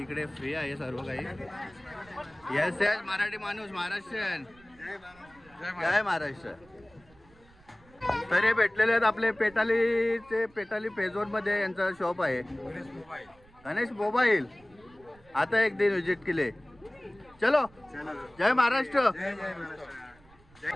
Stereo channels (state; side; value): noise; right; rumble, 27 dB below the sound